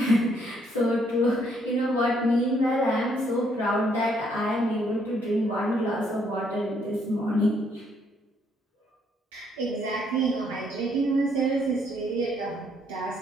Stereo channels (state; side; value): normal; both; correlation 0.70